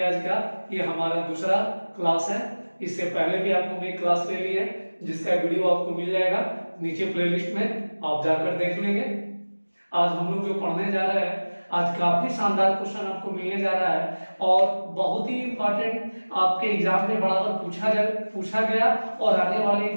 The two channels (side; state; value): both; inverted; correlation -1.00